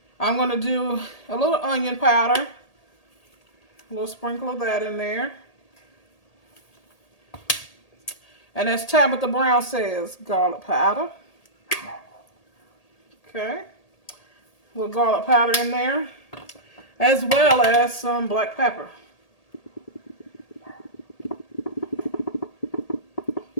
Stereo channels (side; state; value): right; late; 1.8 ms